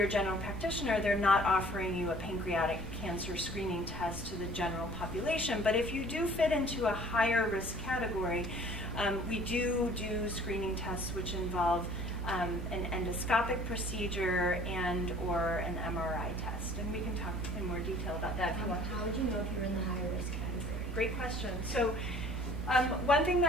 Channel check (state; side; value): normal; both; correlation 0.51